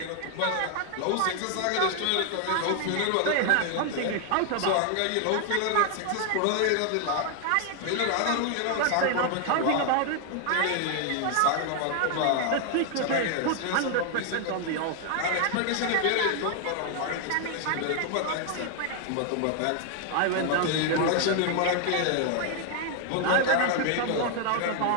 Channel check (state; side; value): different; both; correlation 0.00